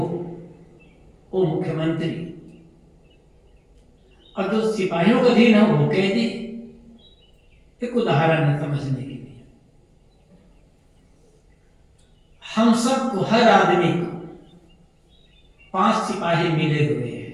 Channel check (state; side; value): identical; both; correlation 1.00